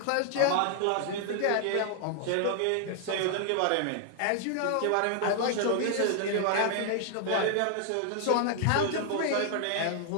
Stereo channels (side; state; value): both; different; correlation 0.00